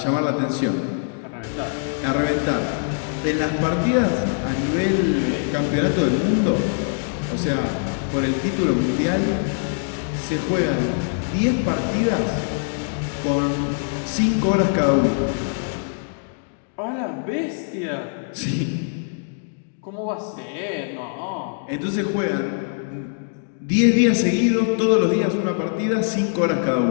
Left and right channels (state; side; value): silent; right; digital silence